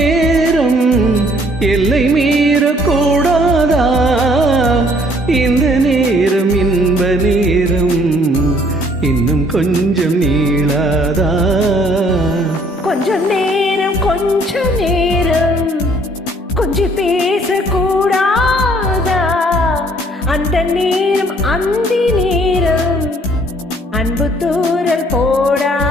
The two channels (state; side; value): normal; both; correlation 0.60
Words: எல்லை மீறக்கூடாதா? இந்த நேரம் இன்ப நேரம் இன்னும் கொஞ்சம் நீளாதா? கொஞ்சம் நேரம் கொஞ்சம் பேசக்கூடாதா? அந்த நேரம் அந்தி நேரம் அன்பு தூரல் போடாதா?